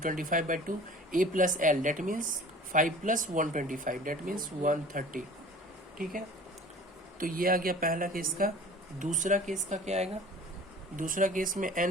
a plus l that means 5 plus 125 that means 130। ठीक है, तो ये आ गया पहला केस का। दूसरा केस का क्या आएगा, दूसरा केस में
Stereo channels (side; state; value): both; normal; correlation 0.44